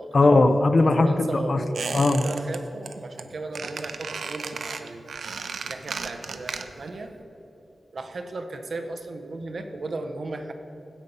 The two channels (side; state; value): both; normal; correlation 0.93